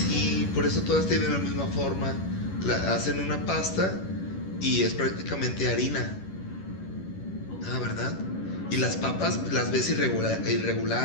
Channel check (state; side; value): late; right; 11 ms